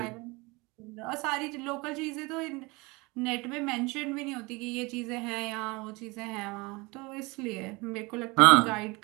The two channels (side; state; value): left; quieter; 25.2 dB